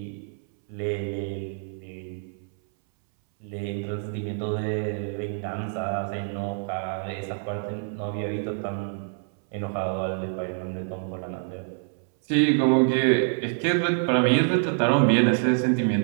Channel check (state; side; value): silent; left; 61 dB below the other